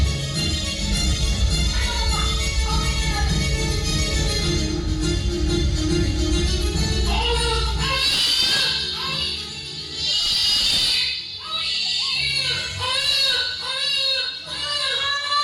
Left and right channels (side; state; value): both; identical; correlation 1.00